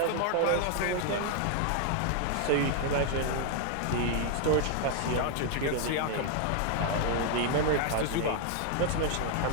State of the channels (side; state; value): both; different; correlation 0.00